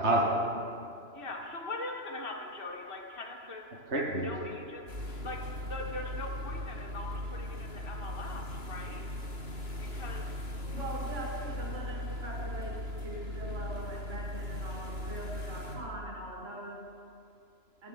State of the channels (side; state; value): left; late; 3.0 ms